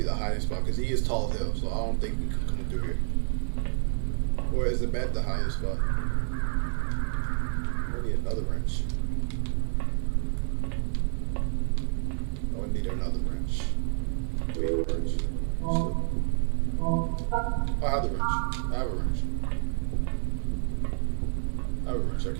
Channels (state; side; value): silent; left; digital silence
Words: the highest spot because he is tall as hell, so I don't think we could come through here. Or is the bed the highest spot? I need another wrench. Oh, I need another wrench. Wait, wrench. So, I have the wrench. I have a wrench. I have a wrench. I